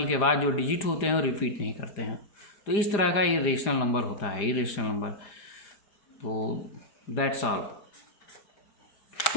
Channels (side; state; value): right; late; 4.9 ms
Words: के बाद जो डिजिट होते हैं वो रिपीट नहीं करते हैं। तो इस तरह का ये रेशनल नंबर होता है, इर्रेशनल नंबर। तो दैट्स ऑल।